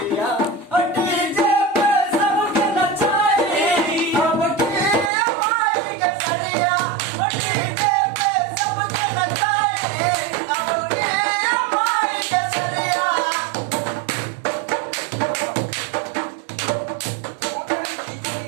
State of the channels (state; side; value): drops out; left; at 5.1 s